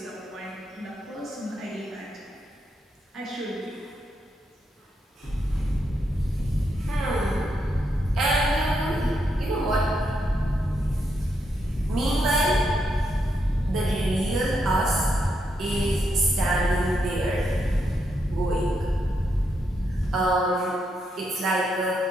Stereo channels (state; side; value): normal; both; correlation 0.81